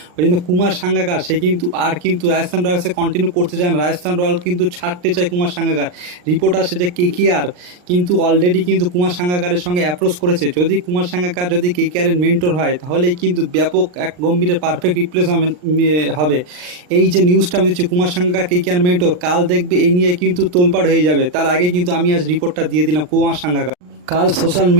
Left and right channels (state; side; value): late; left; 39 ms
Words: ওই জন্য কুমার সাঙ্গাকার সে কিন্তু রাজস্থান রয়্যালসে কন্টিনিউ করতে চায় না। রাজস্থান রয়্যাল কিন্তু ছাড়তে চায় কুমার সাঙ্গাকার। রিপোর্ট আসছে যে কেকেআর কিন্তু অলরেডি কিন্তু কুমার সাঙ্গাকারের সঙ্গে অ্যাপ্রোচ করেছে। যদি কুমার সাঙ্গাকার যদি কেকেআরের মেন্টর হয় তাহলে কিন্তু ব্যাপক এক গম্ভীরের পারফেক্ট রিপ্লেসমেন্ট হবে। এই যে নিউজটা আমি দিচ্ছি কুমার সাঙ্গাকার কেকেআর মেন্টর, কাল দেখবে এই নিয়ে কিন্তু তোলপাড় হয়ে যাবে। তার আগে কিন্তু আমি আজ রিপোর্টটা দিয়ে দিলাম কুমার সাঙ্গাকার কাল সোশ্যাল